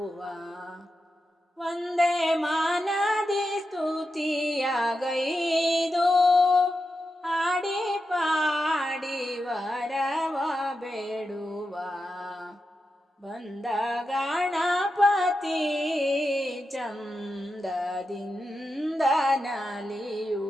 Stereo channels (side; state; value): both; normal; correlation 0.89